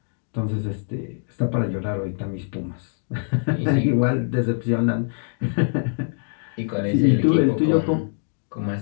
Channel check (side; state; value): right; silent; digital silence